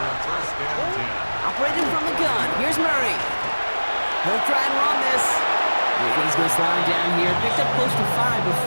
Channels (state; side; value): inverted; both; correlation -1.00